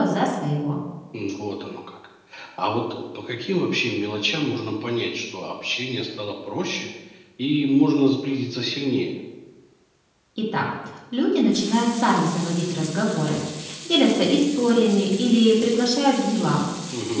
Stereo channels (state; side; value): identical; both; correlation 1.00